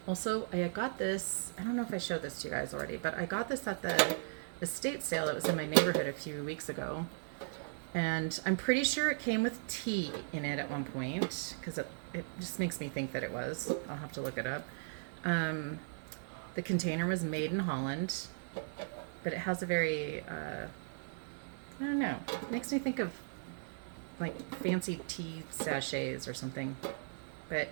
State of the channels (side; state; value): left; silent; 53 dB below the other